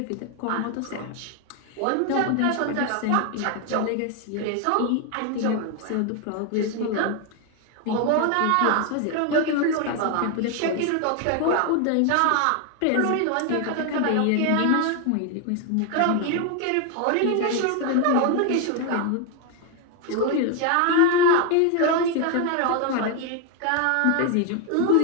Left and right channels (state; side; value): different; both; correlation 0.01